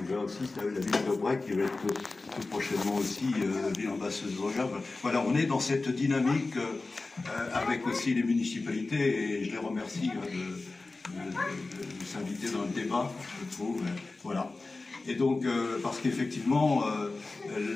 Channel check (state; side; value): quieter; right; 3.5 dB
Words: va aussi, la ville d'Aubrec, qui va être tout prochainement aussi ville ambassadrice. Voilà, on est dans cette dynamique avec aussi les municipalités, et je les remercie de s'inviter dans le débat, je trouve. Voilà. Et donc, parce qu'effectivement,